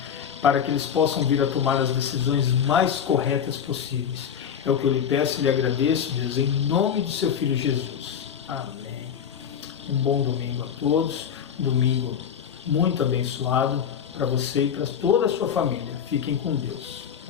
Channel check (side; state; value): right; quieter; 8.2 dB